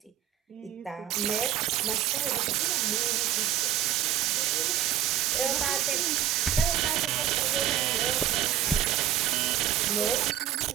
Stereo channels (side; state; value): left; quieter; 11.1 dB